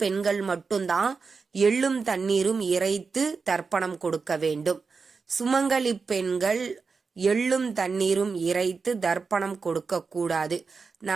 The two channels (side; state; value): left; quieter; 4.9 dB